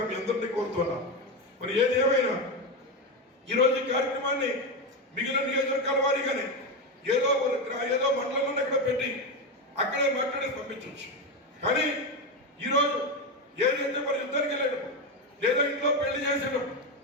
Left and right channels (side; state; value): both; normal; correlation 0.13